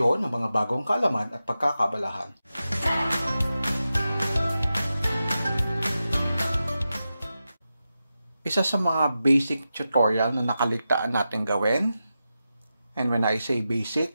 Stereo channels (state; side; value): inverted; both; correlation -0.91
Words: ng mga bagong kaalaman at pagkakabalahan. Isa sa mga basic tutorial na nakaligtaan natin gawin, and when I say